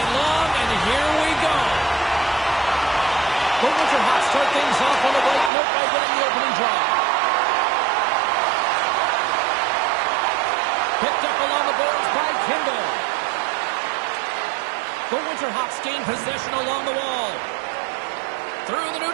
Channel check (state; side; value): drops out; left; at 5.5 s